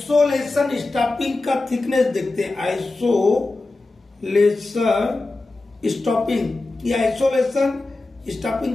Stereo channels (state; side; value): quieter; right; 3.2 dB